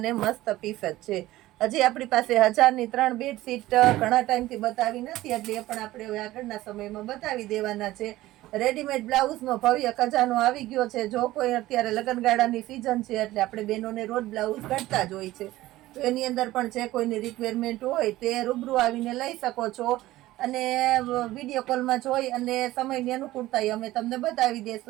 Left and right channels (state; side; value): quieter; left; 16.6 dB